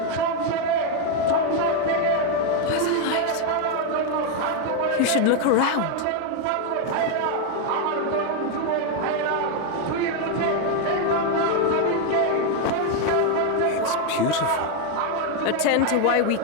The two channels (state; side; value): different; both; correlation 0.01